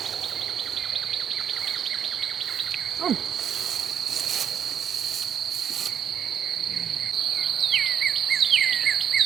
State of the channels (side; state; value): left; quieter; 8.6 dB